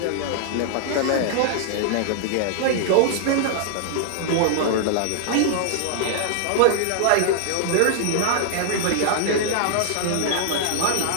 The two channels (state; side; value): different; both; correlation -0.01